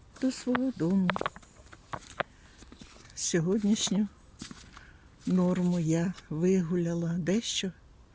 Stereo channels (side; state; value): both; identical; correlation 1.00